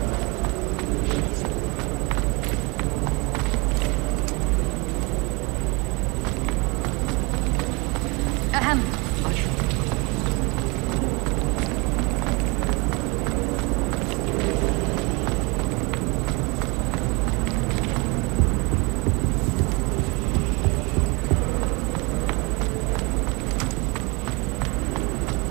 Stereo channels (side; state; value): left; quieter; 28.8 dB